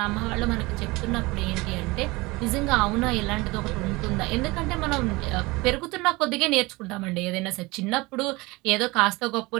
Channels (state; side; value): quieter; left; 22.8 dB